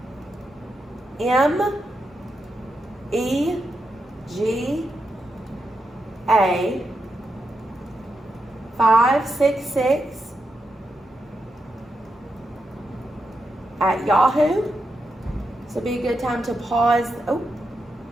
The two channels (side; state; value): both; normal; correlation 0.85